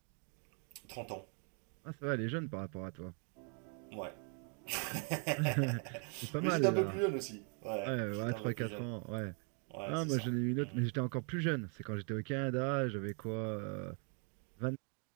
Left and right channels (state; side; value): quieter; left; 39.5 dB